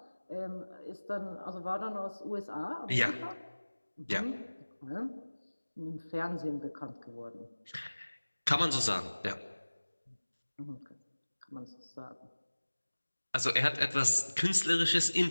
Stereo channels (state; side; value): inverted; both; correlation -1.00